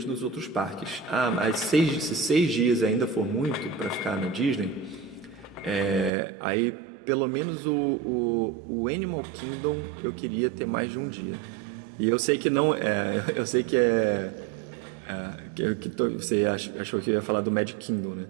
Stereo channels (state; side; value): drops out; left; at 6.1 s